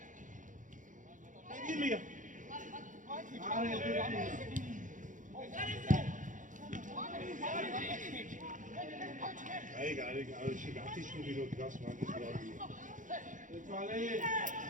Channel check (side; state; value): left; late; 0.37 ms